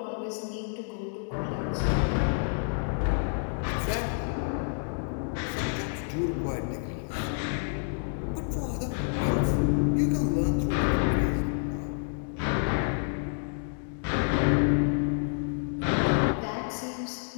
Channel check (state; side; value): silent; right; digital silence